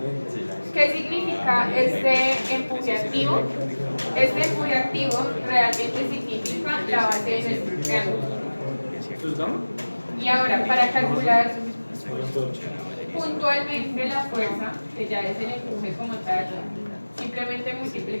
¿qué significa este empuje activo? Este empuje activo realmente significa la base de nuestro triángulo. Y ahora, para calcular puntualmente la fuerza, que ya es el empuje como tal, simplemente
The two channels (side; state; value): both; inverted; correlation -1.00